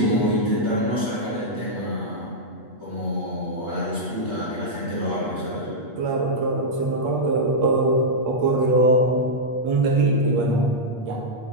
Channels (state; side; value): late; left; 8.4 ms